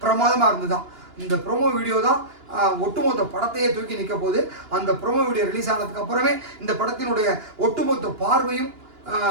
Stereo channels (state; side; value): late; left; 2.9 ms